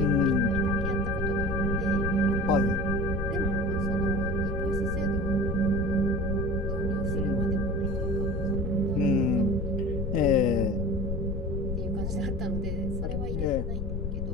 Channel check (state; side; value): noise; left; rumble, 2 dB below the sound